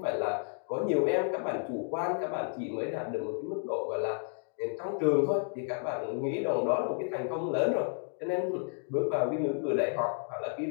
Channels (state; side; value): silent; right; 57 dB below the other